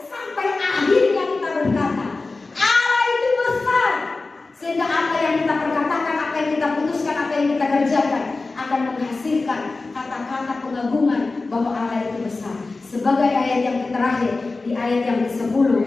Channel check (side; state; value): right; quieter; 3.6 dB